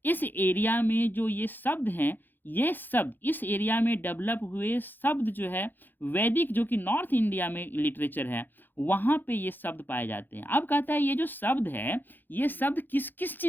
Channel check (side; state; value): right; late; 0.091 ms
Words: इस एरिया में जो ये शब्द हैं ये शब्द इस एरिया में डेवलप हुए शब्द जो है वैदिक, जो कि नॉर्थ इंडिया में लिटरेचर है, वहाँ पे ये शब्द पाए जाते हैं। अब कहता है ये जो शब्द है, ये शब्द किस किस